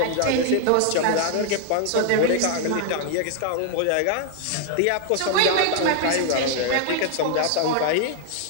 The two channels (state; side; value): different; both; correlation 0.00